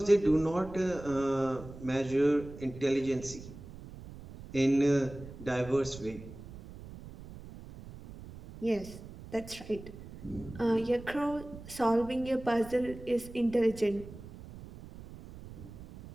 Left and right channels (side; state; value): right; noise; rumble, 15 dB below the sound